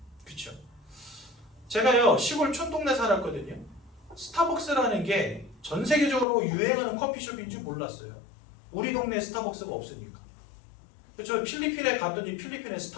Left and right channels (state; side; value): drops out; right; at 6.2 s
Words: 그렇죠? 제가요 시골 촌동네 살았거든요. 스타벅스라는 게 전 세계적으로 유행하는 커피숍인지 몰랐어요. 우리 동네에 스타벅스가 없으니까. 그렇죠? 필리핀에 갔더니 필리핀에